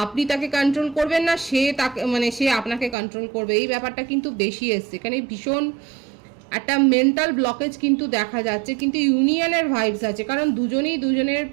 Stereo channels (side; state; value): left; drops out; at 3.0 s